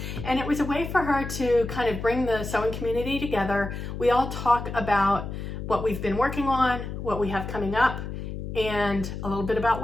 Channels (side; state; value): left; noise; hum, 7 dB below the sound